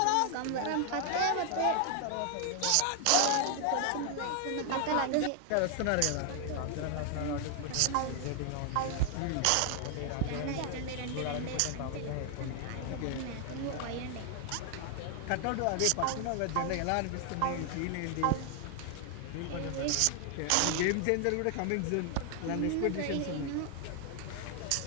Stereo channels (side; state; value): both; different; correlation 0.00